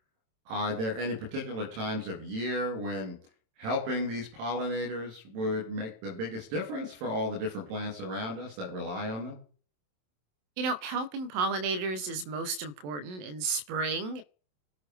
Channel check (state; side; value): late; left; 27 ms